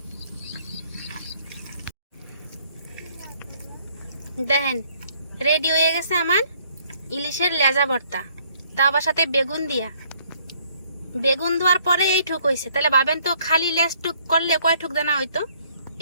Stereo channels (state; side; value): inverted; both; correlation -0.64